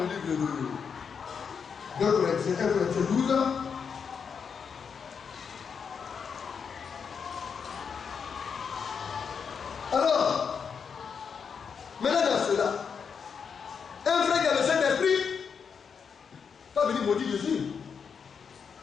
livre de 2 Corinthiens 12. Alors, maintenant dans cela, un frère qui a le Saint-Esprit pas venir maudire Jésus.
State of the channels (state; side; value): quieter; right; 6.4 dB